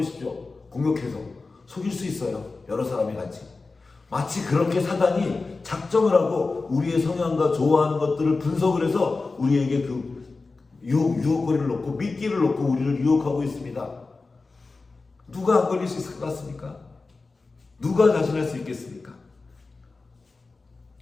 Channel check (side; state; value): right; quieter; 3.8 dB